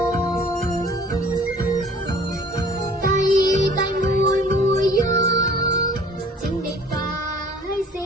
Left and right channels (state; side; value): normal; both; correlation 0.51